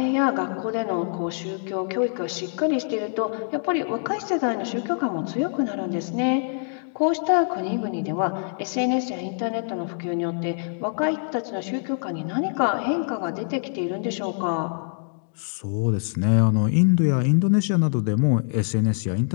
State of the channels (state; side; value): silent; right; 62 dB below the other